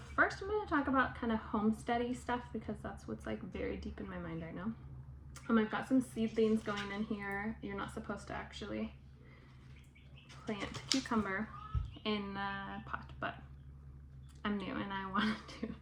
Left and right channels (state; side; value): identical; both; correlation 1.00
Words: first I'm going to talk about kind of homesteady stuff because that's what's like very deep in my mind right now. I've got some seedlings going in here. You're not supposed to actually plant cucumber in a pot, but I'm new and I want to,